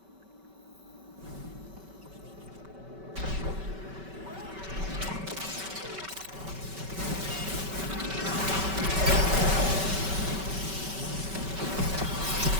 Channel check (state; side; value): late; left; 5.2 ms